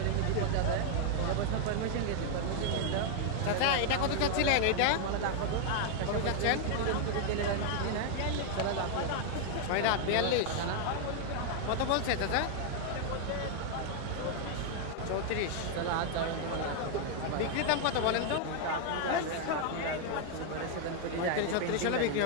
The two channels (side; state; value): both; different; correlation 0.00